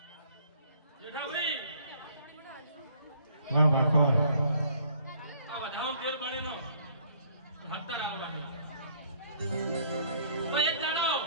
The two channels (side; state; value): both; inverted; correlation -0.61